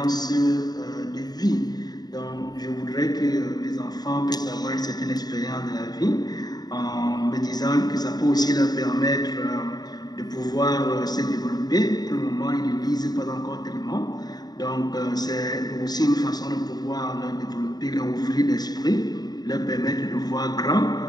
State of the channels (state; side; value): late; right; 0.19 ms